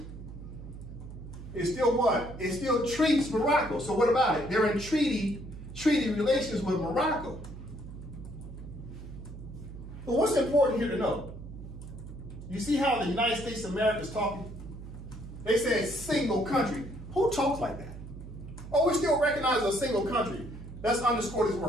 is still what? It still treats Morocco. So what about it? They're in treaty relations with Morocco. But what's important here to know? You see how the United States of America is talking? They say single country. Who talks like that? Oh, we still recognize a single country. Let's underscore this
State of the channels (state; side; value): noise; right; hum, 12 dB below the sound